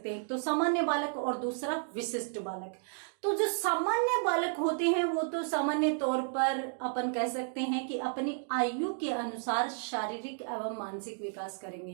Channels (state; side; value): silent; left; digital silence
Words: हैं, तो सामान्य बालक और दूसरा विशिष्ट बालक। तो जो सामान्य बालक होते हैं वो तो सामान्य तौर पर अपन कह सकते हैं कि अपनी आयु के अनुसार शारीरिक एवं मानसिक विकास